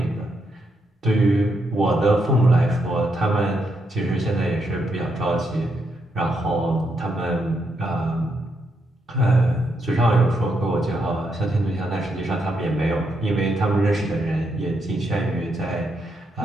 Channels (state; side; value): normal; both; correlation 0.80